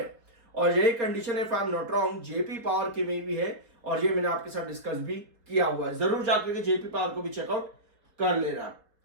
और यही कंडीशन है, if I am not wrong, JP power की में भी है, और ये मैंने आपके साथ डिस्कस भी किया हुआ है। जरूर जाकर के जेपी पावर को भी चेकआउट कर लेना।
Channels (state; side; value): late; left; 4.4 ms